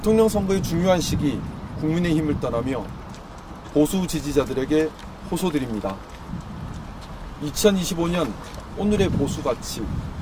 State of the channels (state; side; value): identical; both; correlation 1.00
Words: 선거의 중요한 시기 국민의힘을 떠나며 보수 지지자들에게 호소드립니다. 2025년 오늘의 보수 가치,